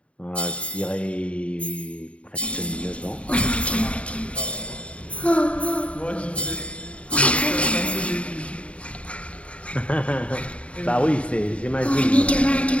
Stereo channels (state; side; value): late; right; 0.062 ms